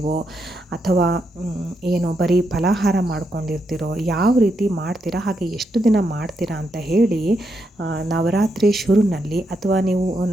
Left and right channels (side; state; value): both; normal; correlation 0.81